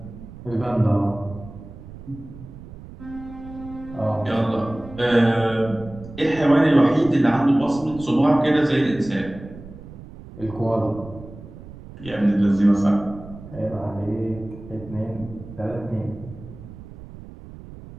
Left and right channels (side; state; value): right; noise; rumble, 16 dB below the sound